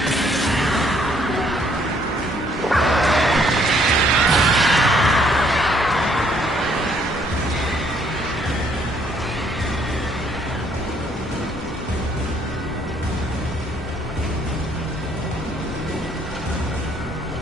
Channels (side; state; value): both; normal; correlation 0.66